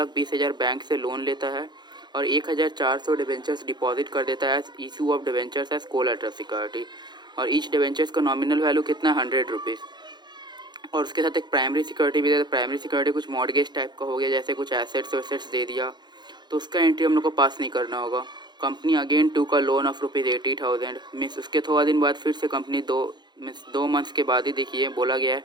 बैंक से लोन लेता है और 1,400 डिवेंचर्स डिपॉजिट कर देता है issue of debentures as collateral security. और ईच डिवेंचर्स का नॉमिनल वैल्यू कितना है, ₹100। और उसके साथ एक प्राइमरी सिक्योरिटी भी देता है। प्राइमरी सिक्योरिटी कुछ मॉर्गेज टाइप का हो गया, जैसे कुछ एसेट्स वेसेट्स दे दिया, तो उसका एंट्री हम लोग को पास नहीं करना होगा। कंपनी अगेन टू का लोन ऑफ ₹80,000 मीन्स उसके थोड़ा दिन बाद फिर से कंपनी दो मंथ्स के बाद ही देखिए बोला गया है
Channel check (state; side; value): late; left; 0.21 ms